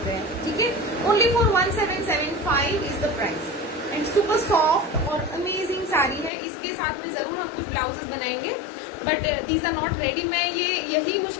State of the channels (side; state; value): right; drops out; at 6.3 s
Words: रहे हैं, ठीक है। Only for 1775 is the price, and super soft और अमेजिंग साड़ी है। इसके साथ में जरूर हम कुछ ब्लाउजेस बनाएंगे, but these are not ready. मैं ये यही